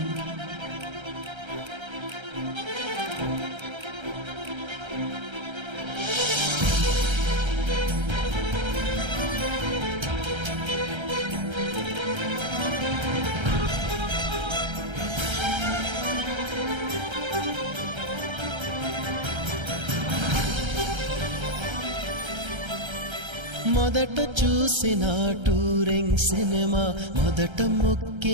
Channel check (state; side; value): late; left; 1.3 ms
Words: మొదట చూసిన టూరింగ్ సినిమా, మొదట